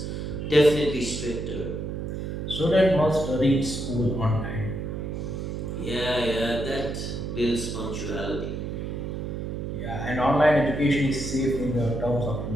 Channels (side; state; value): right; noise; hum, 4 dB below the sound